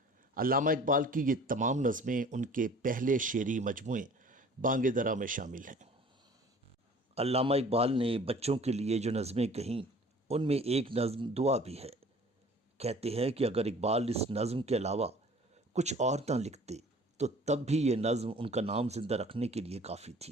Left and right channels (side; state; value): both; normal; correlation 0.48